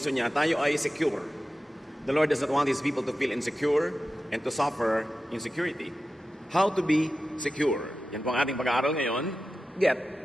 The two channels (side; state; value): both; normal; correlation 0.93